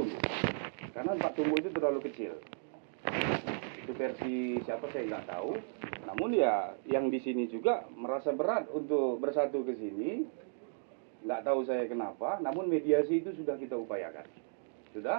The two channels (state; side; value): silent; left; digital silence